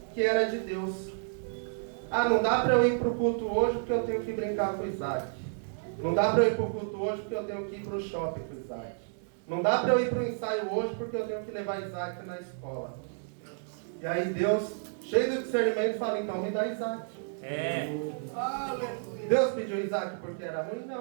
que era de Deus. Não dá para eu ir para o culto hoje porque eu tenho que brincar com Isaac. Não dá para eu ir para o culto hoje porque eu tenho que ir para o shopping com Isaac. Não dá para eu ir para o ensaio hoje porque eu tenho que levar Isaac na escola. E aí Deus, cheio de discernimento, fala: então me dá Isaac. Deus pediu Isaac porque era ruim?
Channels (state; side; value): silent; left; digital silence